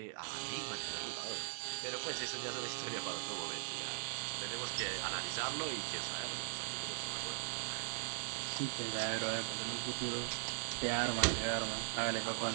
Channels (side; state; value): left; silent; digital silence